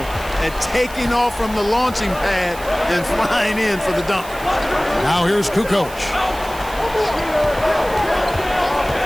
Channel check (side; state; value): right; noise; hiss, 16 dB below the sound